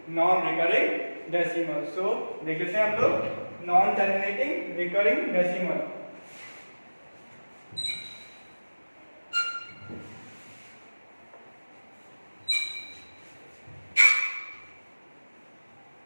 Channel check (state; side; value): inverted; both; correlation -1.00